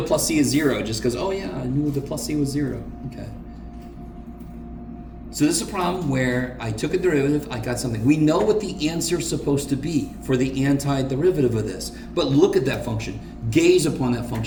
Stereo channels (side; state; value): both; identical; correlation 1.00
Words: plus c is 0, just because, oh yeah, I knew the plus c was 0. Okay. So this is a problem where I took a derivative, I got something. We know what the answer is supposed to be for the antiderivative of this. But look at that function. Gaze upon that